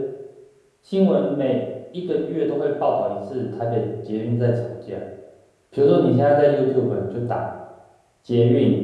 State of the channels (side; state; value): both; identical; correlation 1.00